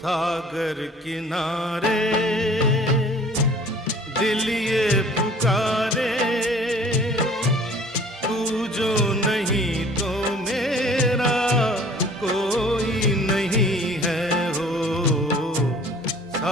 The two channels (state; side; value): normal; both; correlation 0.50